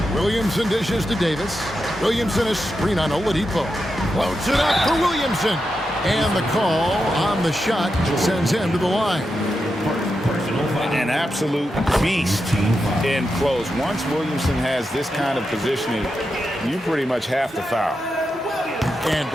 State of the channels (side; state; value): both; normal; correlation 0.87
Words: Williamson dishes to Davis. Williamson a screen on Oladipo. Floats it up for Williamson. And the call on the shot sends him to the line. An absolute beast in close. Once Williamson has this kind of positioning, you pretty much have to foul. And